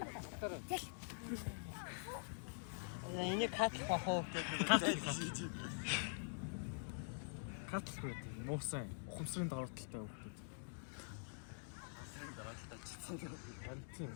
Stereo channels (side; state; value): right; silent; digital silence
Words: Энийг катлах бахуу гэдэг. Катлах байдаг. Муусан ухамсарын давааталтай хүмүүс. Ухамсарын давааталтай чицсэн.